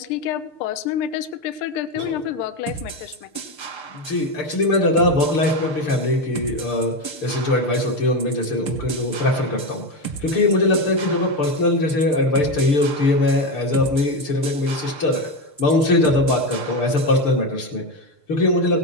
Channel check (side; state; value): right; late; 6.7 ms